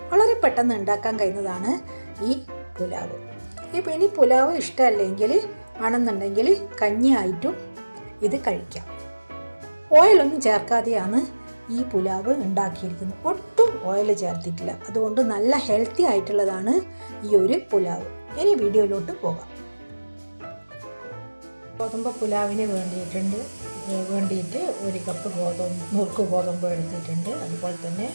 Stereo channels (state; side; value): inverted; both; correlation -1.00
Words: വളരെ പെട്ടെന്ന് ഉണ്ടാക്കാൻ കഴിയുന്നതാണ് ഈ പുലാവ്. ഇനി പുലാവ് ഇഷ്ടമല്ലെങ്കിൽ ആണെന്നുണ്ടെങ്കിൽ കഞ്ഞിയായിട്ടും ഇത് കഴിക്കാം. ഓയിലൊന്നും ചേർക്കാതെയാണ് ഈ പുലാവ് ഉണ്ടാക്കിയിരിക്കുന്നത്. ഒട്ടും ഓയിൽ ചേർത്തിട്ടില്ല. അതുകൊണ്ട് നല്ല ഹെൽത്തി ആയിട്ടുള്ളതാണ് ഈ ഒരു പുലാവ്. ഇനി വീഡിയോയിലോട്ട് പോകാം. ഗോതമ്പ് പുലാവിന് വേണ്ടിയിട്ട് 1 കപ്പ് നുറുക്ക് ഗോതമ്പ് എടുത്തിട്ടുണ്ട്. അതുപോലെ തന്നെ